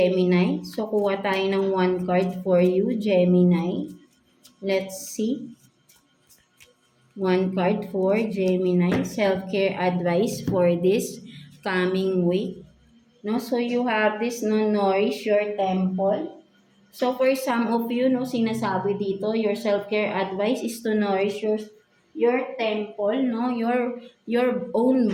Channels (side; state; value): both; identical; correlation 1.00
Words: So, kuha tayo ng 1 card for you, Gemini. Let's see. 1 card for Gemini, self-care advice for this coming week. No, so you have this, no, nourish your temple. So for some of you, no, sinasabi dito, your self-care advice is to nourish your temple, no, your own